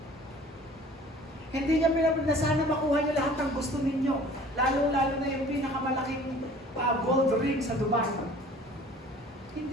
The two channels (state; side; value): normal; both; correlation 0.48